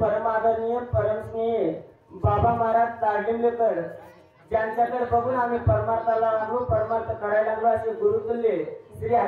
परमस्नेही बाबा महाराज तारलिंगेकर ज्यांच्याकडे बघून आम्ही परमार्थाला लागलो परमार्थ करायला लागलो असे गुरुतुल्य श्री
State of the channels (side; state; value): both; identical; correlation 1.00